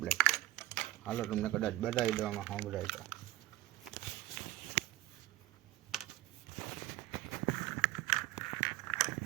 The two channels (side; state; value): left; quieter; 15.8 dB